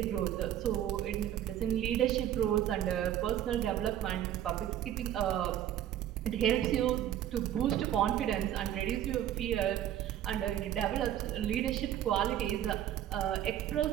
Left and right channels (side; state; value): left; quieter; 11.3 dB